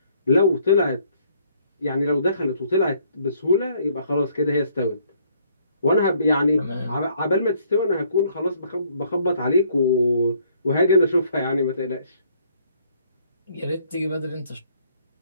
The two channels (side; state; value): both; inverted; correlation -0.64